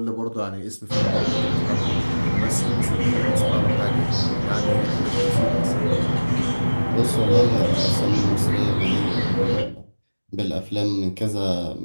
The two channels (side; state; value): both; inverted; correlation -1.00